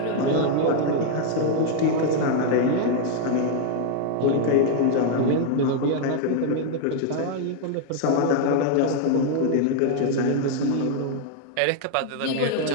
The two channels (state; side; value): different; both; correlation 0.00